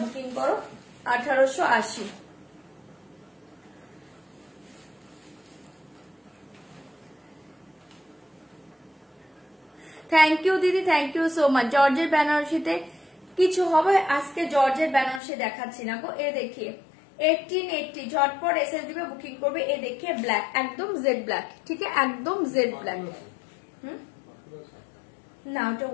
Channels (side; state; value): right; drops out; at 15.2 s